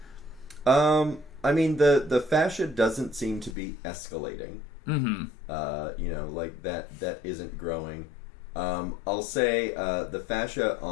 I mean, the fascia doesn't seem to be escalating. Mm-hmm. That isn't growing. I'll say the fascia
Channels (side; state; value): right; drops out; at 3.6 s